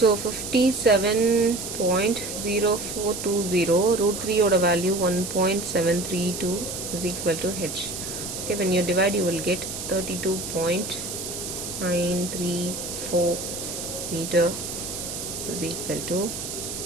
57.0420 root 3 ஓட value 1.732 is equal to h. Okay, when you divide you will get 32.934 meter is equal to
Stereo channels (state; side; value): noise; right; hiss, 6 dB below the sound